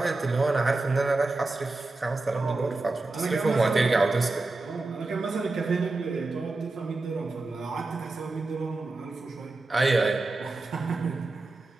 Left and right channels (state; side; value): quieter; left; 3.3 dB